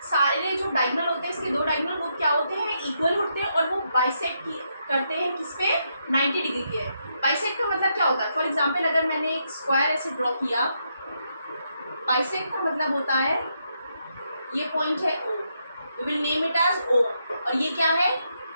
सारे जो डायगोनल होते हैं इसके दो डायगोनल वो क्या होते हैं? इक्वल होते हैं और वो बाइसेक्ट करते हैं किस पे? 90 डिग्री के। बाइसेक्ट का मतलब क्या होता है? फॉर एग्जाम्पल अगर मैंने एक स्क्वायर ऐसे ड्रॉ किया, बाइसेक्ट का मतलब होता है ये पॉइंट है O, we will name it as O, और ये क्या है?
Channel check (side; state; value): both; inverted; correlation -0.79